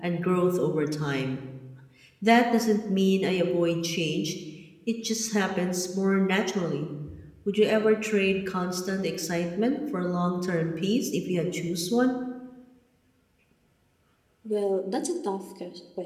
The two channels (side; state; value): both; identical; correlation 1.00